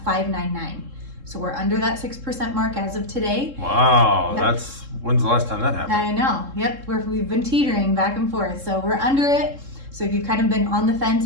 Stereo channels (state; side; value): late; left; 3.7 ms